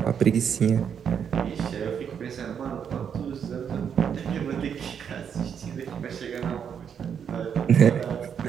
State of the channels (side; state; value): left; quieter; 7.7 dB